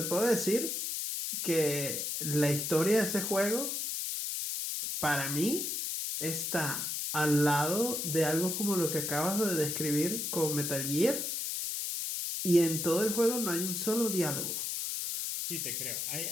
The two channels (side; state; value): left; noise; hiss, 2 dB below the sound